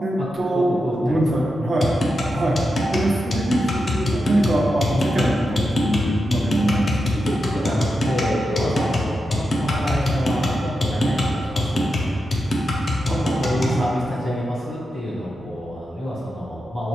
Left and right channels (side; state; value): both; normal; correlation 0.88